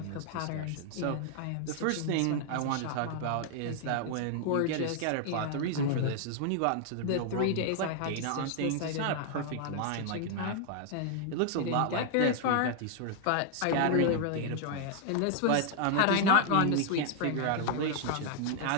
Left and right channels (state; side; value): different; both; correlation 0.00